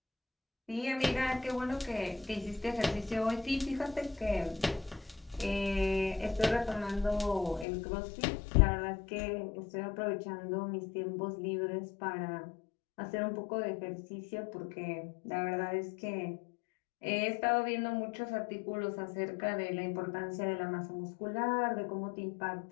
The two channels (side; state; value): right; drops out; at 7.7 s